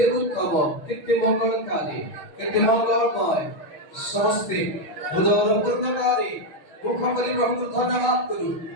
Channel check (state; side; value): late; right; 6.3 ms